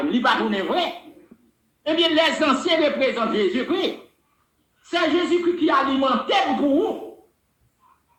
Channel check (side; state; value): both; identical; correlation 1.00